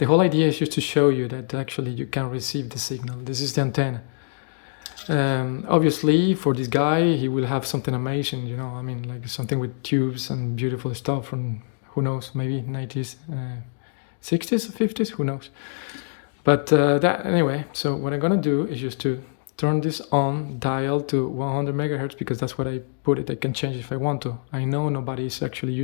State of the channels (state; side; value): silent; right; digital silence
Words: whole idea is just to show you that actually you can receive the signal. This is the antenna. Obviously, for this guy, he will have something amazing, like something with tubes and beautiful stuff from, who knows, maybe 90s, 60s, 50s, who knows. But anyway, so what I'm gonna do is just to turn this on, dial to 100 megahertz, because that's what I put it. I can change if I want to. I know nobody is actually